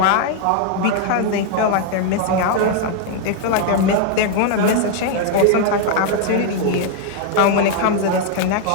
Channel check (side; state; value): both; different; correlation 0.00